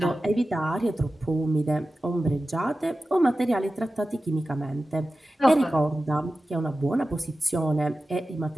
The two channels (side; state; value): both; normal; correlation 0.94